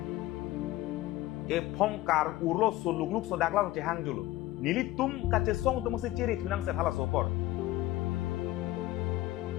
pongkar urlo sulugluk sodak lang cehang julu nilitum Kachesong tum se ciri tunang set hala sopor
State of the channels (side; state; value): right; quieter; 16.6 dB